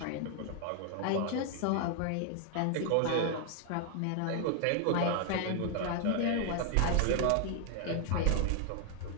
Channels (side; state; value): both; different; correlation 0.00